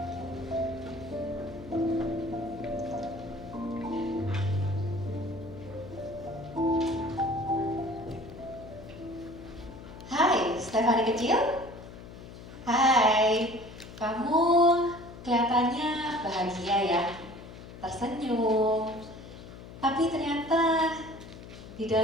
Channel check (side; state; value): left; noise; hum, 15 dB below the sound